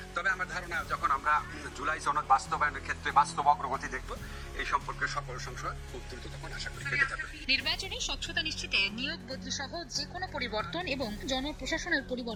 তবে আমার ধারণা যখন আমরা জুলাই সনদ বাস্তবায়নের ক্ষেত্রে বাস্তব অগ্রগতি দেখব, এই সম্পর্কে সকল সংশয় খুব দ্রুত তখন আশা করি কেটে যাবে। নির্বাচনে স্বচ্ছতা নিশ্চিতে নিয়োগ বদলি সহ যে কোনো পরিবর্তন এবং জনপ্রশাসনের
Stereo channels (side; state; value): both; identical; correlation 1.00